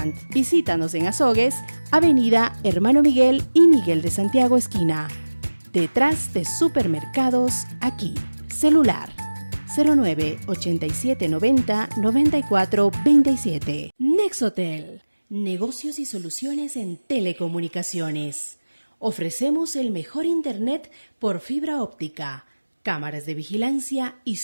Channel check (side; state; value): both; inverted; correlation -1.00